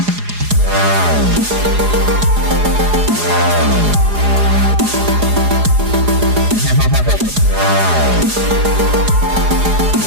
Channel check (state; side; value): late; left; 4.8 ms